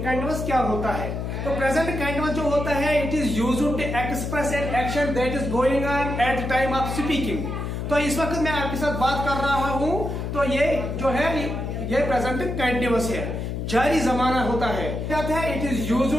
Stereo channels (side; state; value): left; noise; hum, 4 dB below the sound